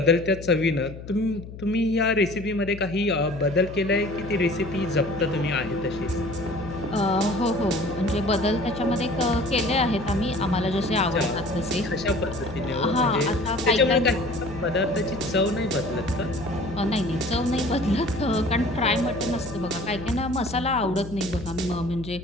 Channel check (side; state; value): left; noise; hum, 13 dB below the sound